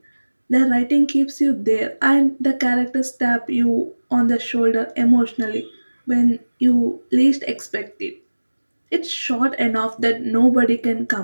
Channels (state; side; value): inverted; both; correlation -1.00